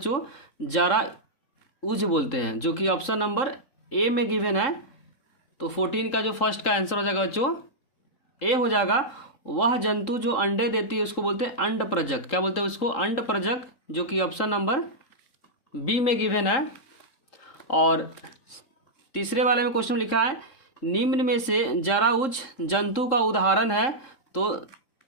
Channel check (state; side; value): late; right; 3.8 ms